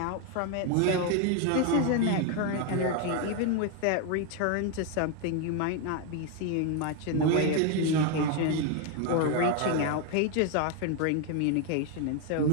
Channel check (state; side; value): different; both; correlation 0.01